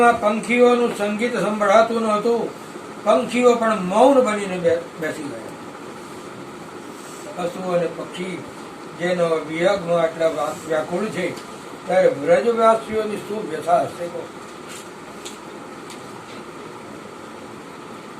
પંખીઓનું સંગીત સંભળાતું નહોતું. પંખીઓ પણ મૌન બનીને બેસી ગયા. પશુ અને પક્ષી જેનો વિયોગમાં આટલા વ્યાકુળ છે, ત્યારે વ્રજવાસીઓની શું વ્યથા હશે?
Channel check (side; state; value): both; identical; correlation 1.00